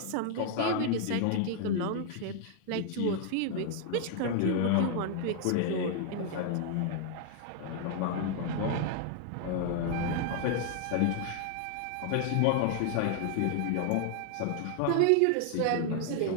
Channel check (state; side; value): different; both; correlation 0.00